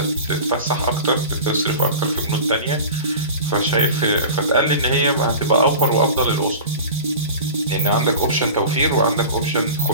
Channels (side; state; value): both; inverted; correlation -0.34